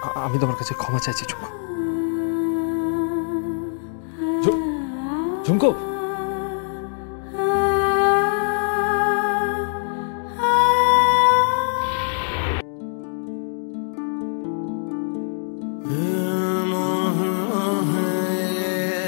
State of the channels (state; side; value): silent; right; digital silence